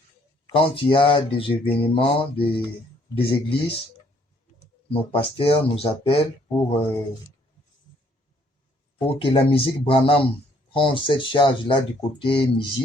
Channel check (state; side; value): normal; both; correlation 0.65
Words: quand il y a des événements, des églises, nos pasteurs nous appellent pour que la musique Branham prenne cette charge-là du côté